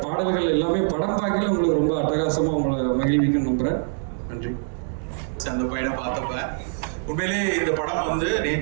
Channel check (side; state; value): left; silent; digital silence